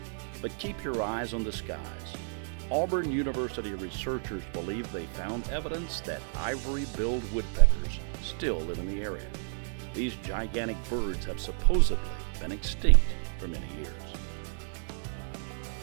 But keep your eyes on the skies. Auburn University researchers believe they found evidence that ivory-billed woodpeckers still live in the area. These gigantic birds have supposedly been extinct for many years.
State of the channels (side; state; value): left; silent; digital silence